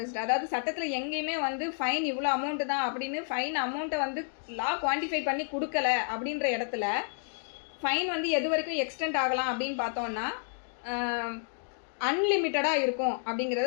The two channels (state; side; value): silent; right; digital silence